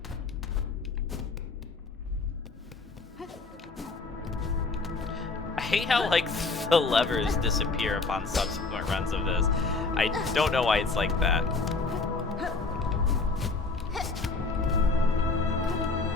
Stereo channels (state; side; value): quieter; right; 3.9 dB